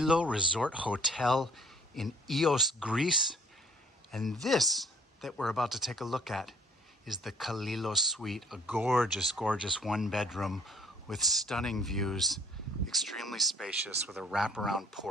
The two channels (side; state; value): both; normal; correlation 0.58